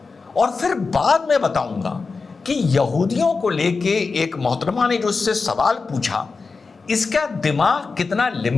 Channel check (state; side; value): quieter; right; 4.4 dB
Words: और फिर बाद में बताऊंगा कि यहूदियों को लेके एक मोहतरमा ने जो इससे सवाल पूछा, इसका दिमाग कितना